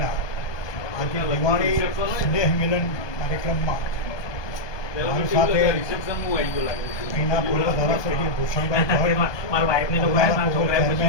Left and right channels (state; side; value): late; right; 1.2 ms